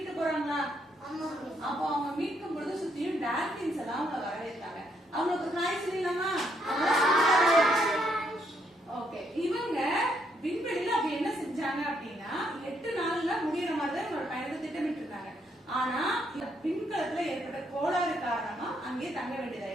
போறாங்களா? அப்போ அவங்க மீட்கும் பொழுது சுத்தியும் டால்பின்ஸ் எல்லாம் அவங்க வரவேற்றாங்க. அவங்களுக்கு ஹாய் சொல்லலாமா? ஓகே. இவங்க விண்வெளியில அப்படி என்ன செஞ்சாங்க அப்படின்னா 8 நாள்ல முடியற மாதிரி தான் இவங்களோட பயணத்தை திட்டமிட்டு இருந்தாங்க. ஆனா விண்கலத்துல ஏற்பட்ட கோளாறு காரணமா அங்கேயே தங்க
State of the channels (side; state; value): both; normal; correlation 0.74